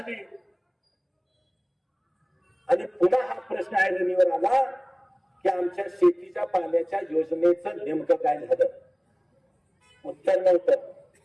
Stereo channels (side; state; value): both; identical; correlation 1.00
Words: आणि पुन्हा हा प्रश्न ऐरणीवर आला की आमच्या शेतीच्या पाण्याच्या योजनेचं नेमकं काय झालं. उत्तर नव्हतं.